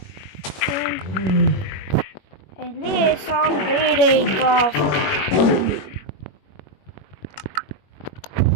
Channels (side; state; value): right; late; 21 ms